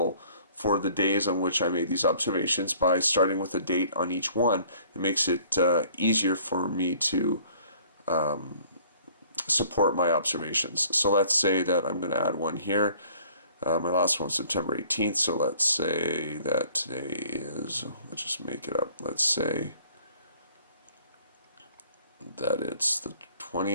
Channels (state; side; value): inverted; both; correlation -0.55